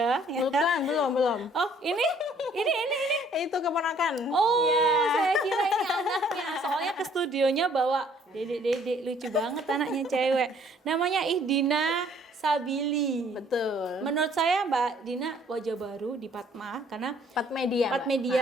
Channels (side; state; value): both; normal; correlation 0.60